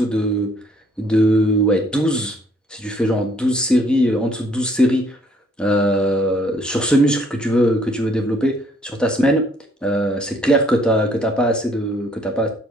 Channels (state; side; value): normal; both; correlation 0.64